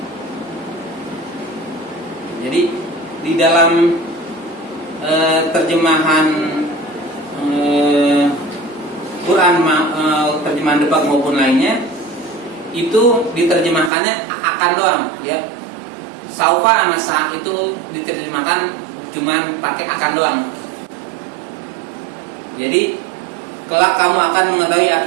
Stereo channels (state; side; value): drops out; left; at 13.9 s